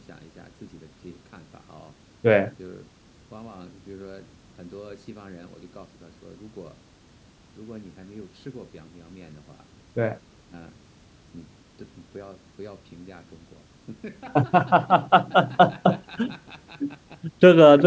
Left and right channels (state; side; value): identical; both; correlation 1.00